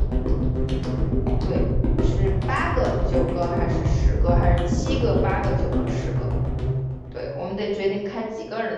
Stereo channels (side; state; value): both; identical; correlation 1.00